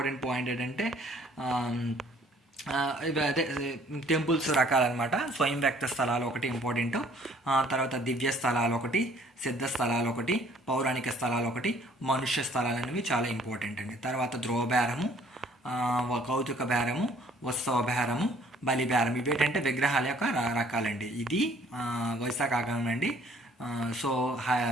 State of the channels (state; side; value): normal; both; correlation 0.58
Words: పాయింట్ ఏంటంటే అదే టెంపుల్స్ రకాలన్నమాట. స్వయం వ్యక్త స్థలాలు ఒకటి ఇంపార్టెంట్. తర్వాత దివ్య స్థలాలు ఒకటి, సిద్ధ స్థలాలు ఒకటి, పౌరాణిక స్థలాలు ఒకటి, మనుష్య స్థలాలు అనేవి చాలా ఇంపార్టెంట్ అండి. తర్వాత ధ్రువబేరము, కౌతుక బేరము, ఉత్సవ బేరము, బలి బేరం. ఇవి ఏంటంటే విగ్రహాల యొక్క రకాలండి. ఇది వైశాఖ ఆగమనం అండి. సో